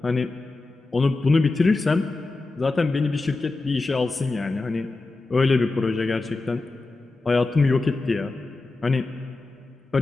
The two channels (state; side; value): quieter; right; 3.4 dB